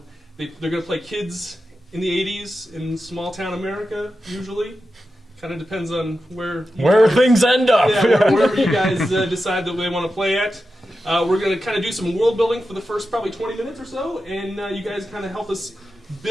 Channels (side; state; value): both; normal; correlation 0.91